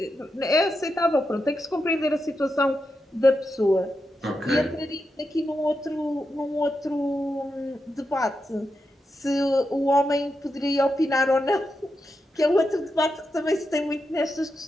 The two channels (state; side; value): normal; both; correlation 0.87